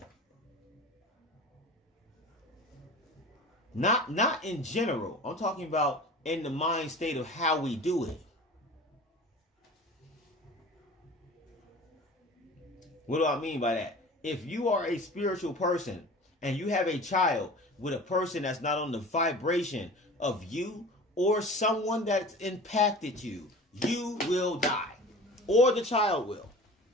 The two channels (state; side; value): normal; both; correlation 0.39